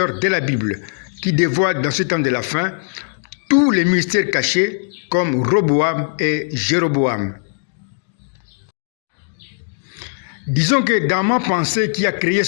de la Bible, qui dévoile dans ce temps de la fin tous les mystères cachés comme Roboam et Jéroboam. Disons que dans ma pensée qui a créé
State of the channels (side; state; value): right; silent; digital silence